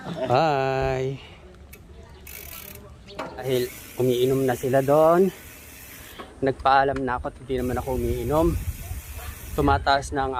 Hi. Dahil umiinom na sila doon. Nagpaalam na ako at hindi naman ako umiinom. Tumataas na ang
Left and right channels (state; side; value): identical; both; correlation 1.00